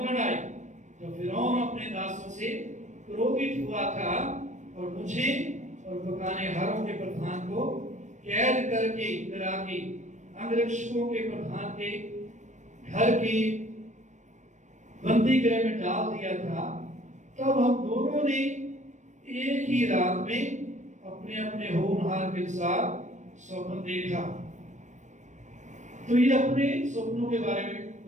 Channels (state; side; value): late; left; 0.35 ms